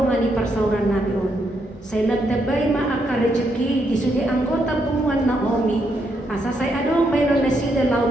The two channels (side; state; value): both; normal; correlation 0.78